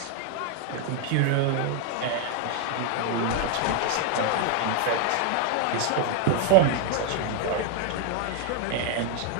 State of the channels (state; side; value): different; both; correlation 0.00